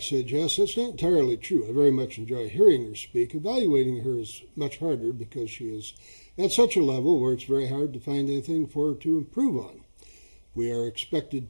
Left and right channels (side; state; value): both; inverted; correlation -1.00